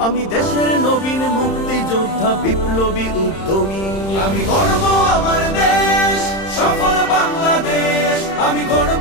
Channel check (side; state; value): right; late; 31 ms